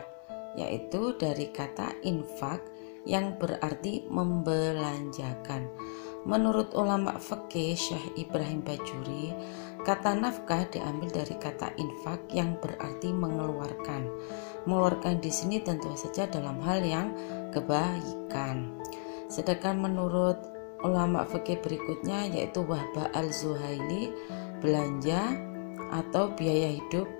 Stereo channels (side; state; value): right; silent; 55 dB below the other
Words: yaitu dari kata infak yang berarti membelanjakan. Menurut ulama fikih Syekh Ibrahim Bajuri, kata nafkah diambil dari kata infak yang berarti mengeluarkan. Mengeluarkan di sini tentu saja dalam hal yang kebaikan. Sedangkan menurut ulama fikih berikutnya yaitu Wahbah Al-Zuhaili, belanja atau biaya hidup